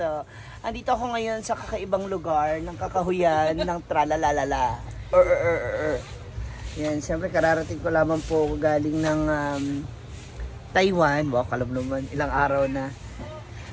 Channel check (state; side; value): identical; both; correlation 1.00